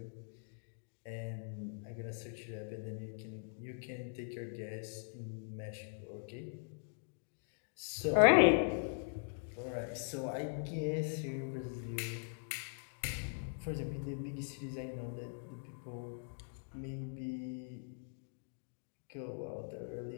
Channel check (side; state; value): right; silent; digital silence